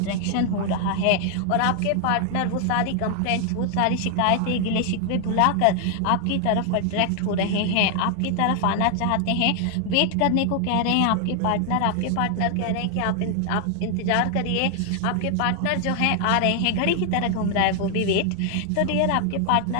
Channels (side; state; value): both; different; correlation 0.00